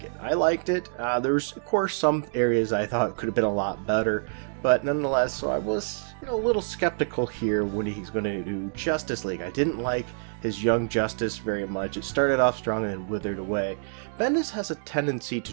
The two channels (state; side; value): silent; left; digital silence